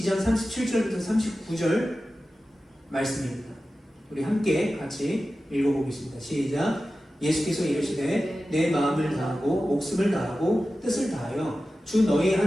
37절부터 39절 말씀입니다. 우리 함께 같이 읽어보겠습니다. 시작. 예수께서 이르시되 내 마음을 다하고 목숨을 다하고 뜻을 다하여 주 너희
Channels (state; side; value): normal; both; correlation 0.94